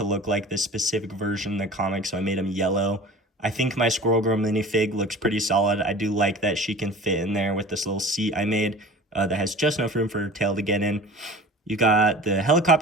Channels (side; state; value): both; normal; correlation 0.40